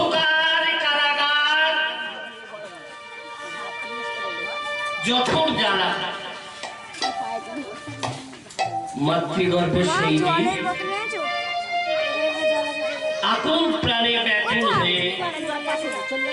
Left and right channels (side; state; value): both; identical; correlation 1.00